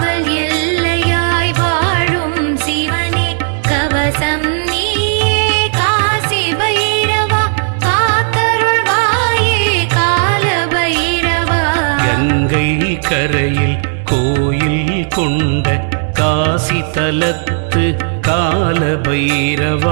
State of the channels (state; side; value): silent; left; 64 dB below the other